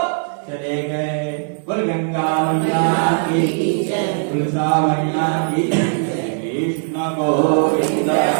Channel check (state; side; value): silent; left; 67 dB below the other